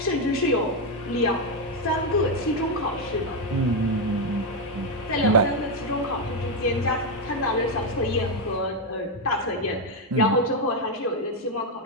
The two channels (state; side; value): normal; both; correlation 0.04